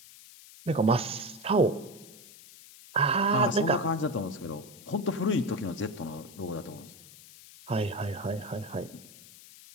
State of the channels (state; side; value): noise; left; hiss, 20 dB below the sound